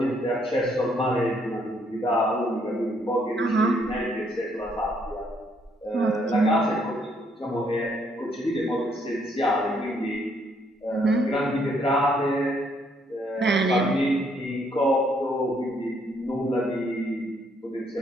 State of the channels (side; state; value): both; normal; correlation 0.70